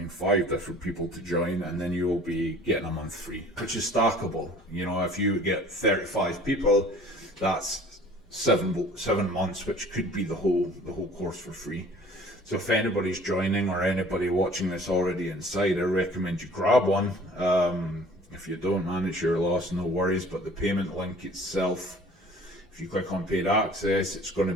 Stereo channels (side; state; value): both; normal; correlation 0.49